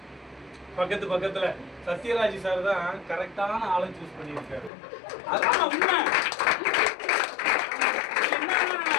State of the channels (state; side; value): drops out; right; at 4.7 s